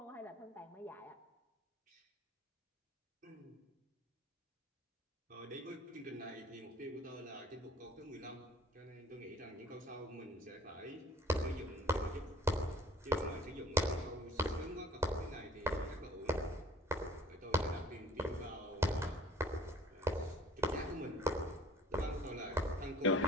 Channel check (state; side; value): normal; both; correlation 0.52